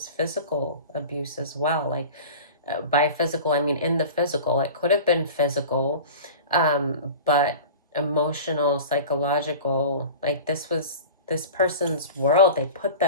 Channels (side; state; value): both; inverted; correlation -0.35